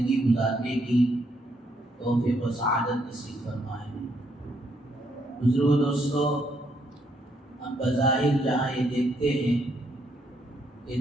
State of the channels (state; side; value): normal; both; correlation 0.73